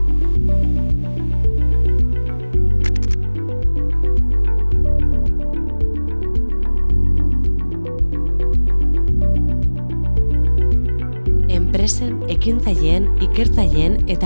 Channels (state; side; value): inverted; both; correlation -1.00